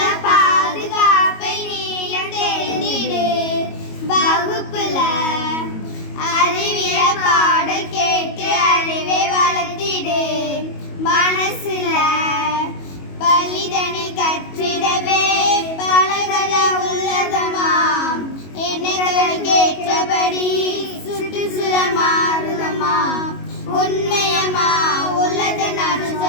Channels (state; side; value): late; right; 22 ms